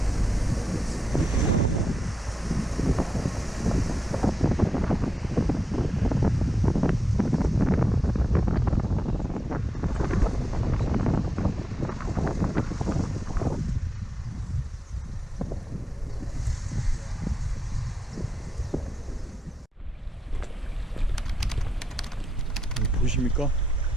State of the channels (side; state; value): both; normal; correlation 0.88